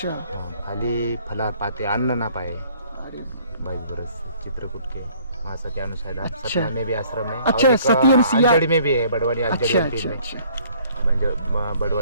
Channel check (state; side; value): inverted; both; correlation -0.58